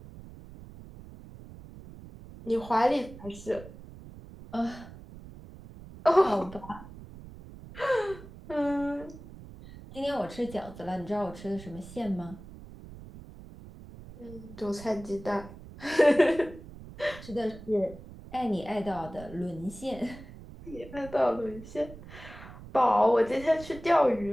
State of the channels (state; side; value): noise; right; rumble, 16 dB below the sound